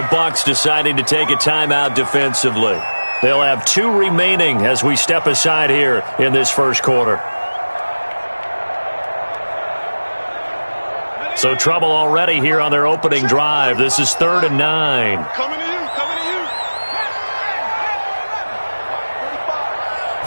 Bucs deciding to take a timeout defensively. They'll have 2 remaining as we step aside here in this first quarter. So trouble already here on their opening drive. This is 3rd and 9.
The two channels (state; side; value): inverted; both; correlation -1.00